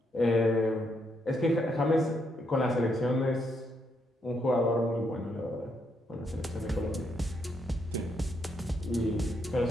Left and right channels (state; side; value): normal; both; correlation 0.77